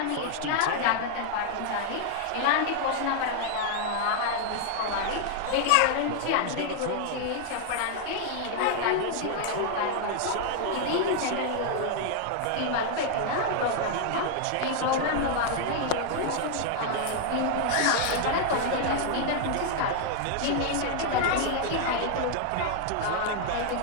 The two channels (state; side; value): different; both; correlation 0.00